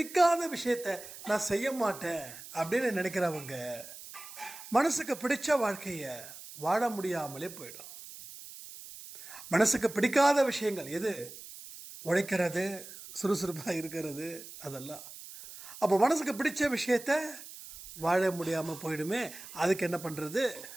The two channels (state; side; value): noise; right; hiss, 14 dB below the sound